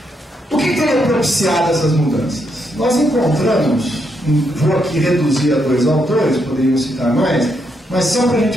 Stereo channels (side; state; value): both; normal; correlation 0.78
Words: O que teria propiciado essas mudanças? Nós encontramos, vou aqui reduzir a 2 autores, poderíamos citar mais, mas só para a